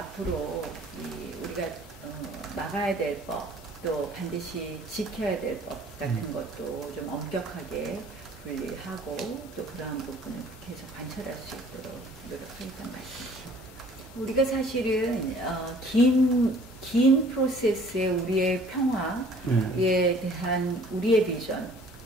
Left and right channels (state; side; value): normal; both; correlation 0.53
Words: 우리가 막아야 될 법, 또 반드시 지켜야 될 법 같은 것도 좀 엄격하게 분리하고 또 그러한 부분을 계속 관철할 수 있도록 노력하겠다는 말씀입니다. 우리가 사실은 긴 프로세스의 우리의 평화에 대한 우리의